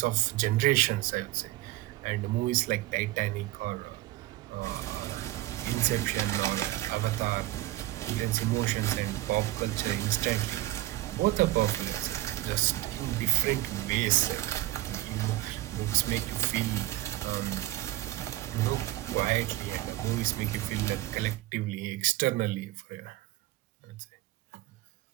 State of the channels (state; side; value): quieter; left; 17.2 dB